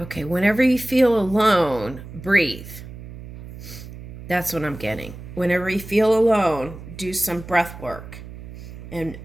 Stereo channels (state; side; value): noise; right; hum, 13 dB below the sound